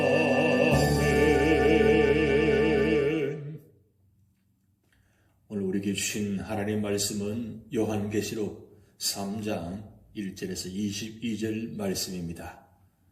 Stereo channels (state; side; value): identical; both; correlation 1.00